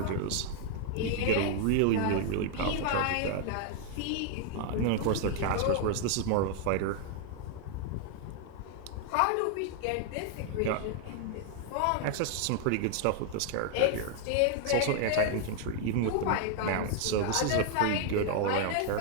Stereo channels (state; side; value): different; both; correlation 0.00